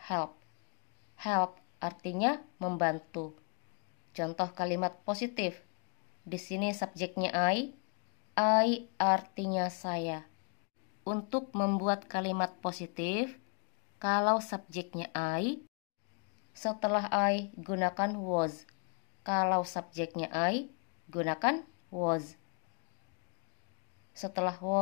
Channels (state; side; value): quieter; right; 37.4 dB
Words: help. Help artinya membantu. Contoh kalimat positif. Di sini subjeknya I artinya saya. Untuk membuat kalimat positif, kalau subjeknya I, setelah I gunakan was. Kalau subjeknya I, gunakan was. Setelah